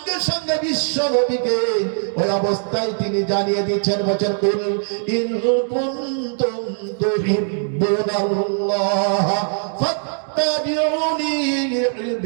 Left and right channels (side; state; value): left; silent; digital silence